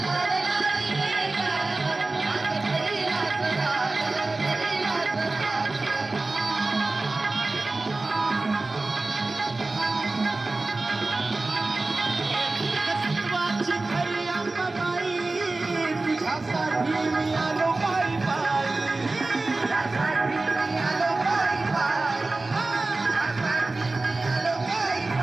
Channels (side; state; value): left; quieter; 3.2 dB